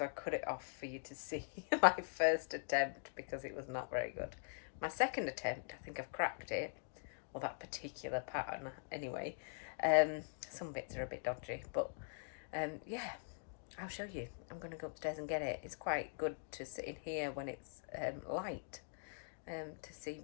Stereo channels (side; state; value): right; silent; digital silence